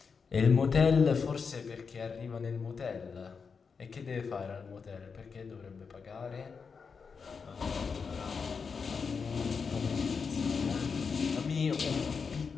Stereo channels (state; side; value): quieter; right; 5.5 dB